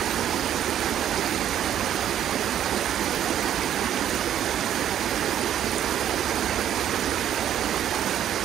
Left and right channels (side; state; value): left; quieter; 10.6 dB